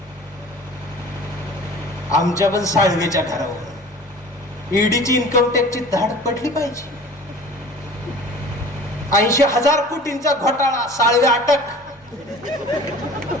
आमच्या पण साळवेच्या घरावर ईडीची इन्कम टॅक्सची धाड पडली पाहिजे. 80,000 कोटींचा घोटाळा, साळवे अटक,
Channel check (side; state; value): both; normal; correlation 0.43